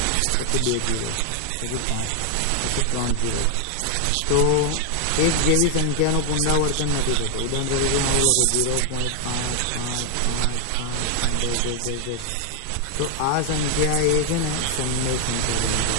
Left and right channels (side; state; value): both; different; correlation 0.00